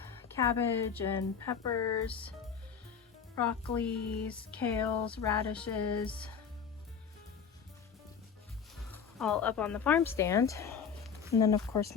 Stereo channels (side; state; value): right; quieter; 6.8 dB